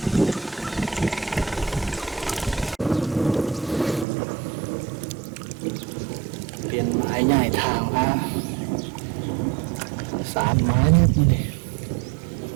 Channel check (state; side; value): drops out; left; at 4.0 s